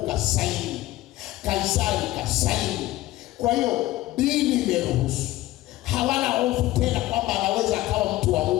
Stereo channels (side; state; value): right; quieter; 16.5 dB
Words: kasaini, Kaisari kasaini, kwa hiyo dini imeruhusu. Hawana hofu tena kwamba anaweza akawa mtu wa